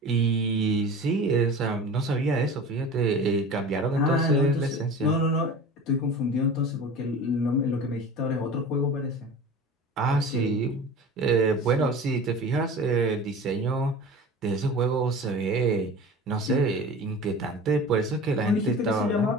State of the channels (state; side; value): normal; both; correlation 0.36